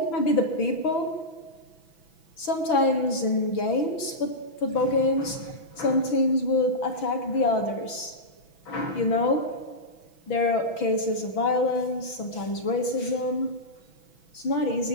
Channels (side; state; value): right; late; 6.1 ms